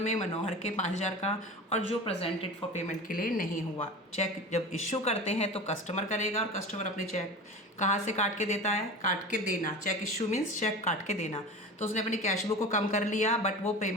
मनोहर के 5,000 का, और जो प्रेजेंटेड फॉर पेमेंट के लिए नहीं हुआ। चेक जब इशू करते हैं तो कस्टमर करेगा, और कस्टमर अपने चेक कहाँ से काट के देता है, काट के देना। चेक इशू मीन्स चेक काट के देना। तो उसने अपनी कैश बुक को कम कर लिया, बट वो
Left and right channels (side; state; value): both; normal; correlation 0.32